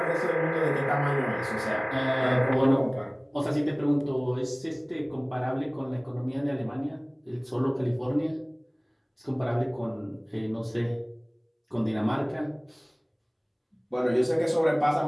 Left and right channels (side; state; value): both; identical; correlation 1.00